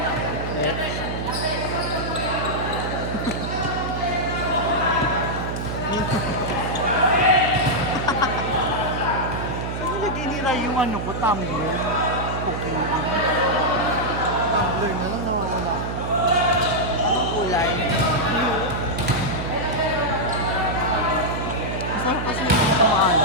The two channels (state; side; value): noise; right; hum, 4 dB below the sound